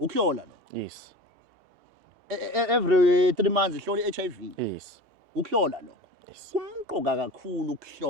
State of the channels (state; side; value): late; left; 2.7 ms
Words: yes every 3 months hlola iHIV yes ukuhlola lokho kumqoka kakhulu